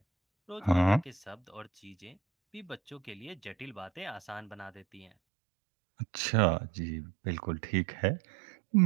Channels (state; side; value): drops out; left; at 5.1 s